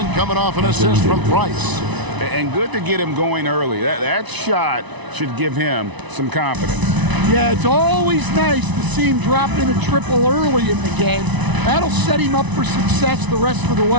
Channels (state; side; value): late; left; 1.0 ms